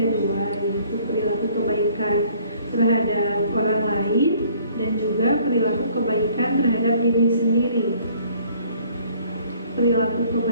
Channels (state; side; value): inverted; both; correlation -0.59